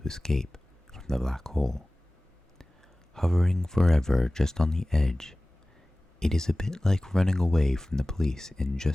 escape from the black hole. Hovering forever just on the edge, it is a bit like running away from the police and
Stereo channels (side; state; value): both; normal; correlation 0.98